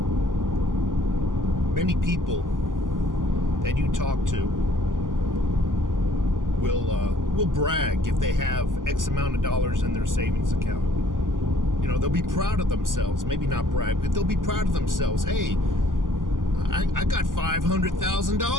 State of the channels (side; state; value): left; late; 0.89 ms